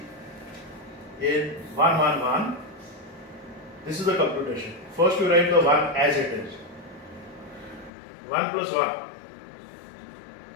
in 111, this is the computation. First you write the 1 as it is. 1 plus 1.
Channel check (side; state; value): right; drops out; at 7.9 s